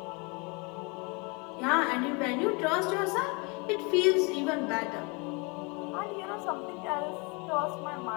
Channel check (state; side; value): quieter; right; 30.3 dB